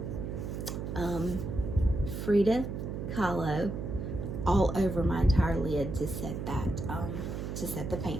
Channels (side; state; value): right; noise; hum, 5 dB below the sound